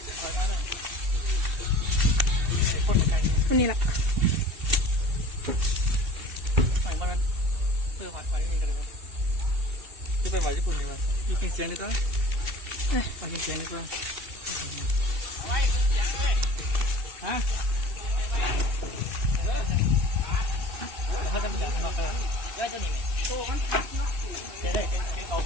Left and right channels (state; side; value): late; left; 2.7 ms